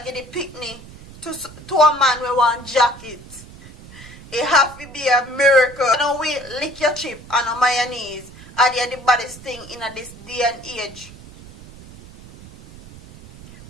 get the picnic. To a man we want jacket. It have to be a miracle. Now we lick your chip and on mayonnaise. Are they the baddest thing in this day and age?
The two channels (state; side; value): noise; right; rumble, 18 dB below the sound